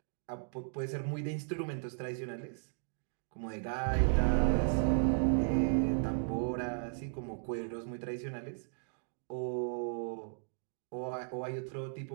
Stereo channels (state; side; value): silent; left; digital silence